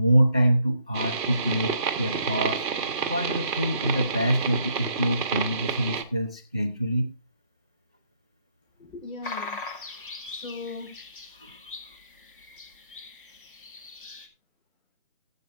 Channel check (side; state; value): both; inverted; correlation -0.70